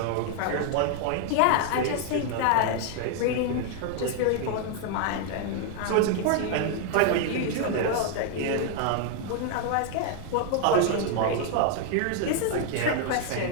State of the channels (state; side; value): different; both; correlation 0.00